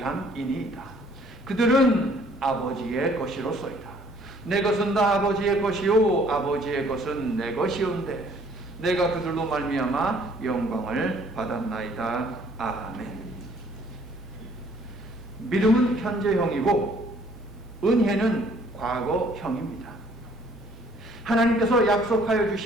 그들은 아버지의 것이로소이다. 내 것은 다 아버지의 것이요 아버지의 것은 내 것이온데 내가 그들로 말미암아 영광을 받았나이다. 아멘. 믿음은 현재형이고 은혜는 과거형입니다. 하나님께서 약속하여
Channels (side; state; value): both; normal; correlation 0.59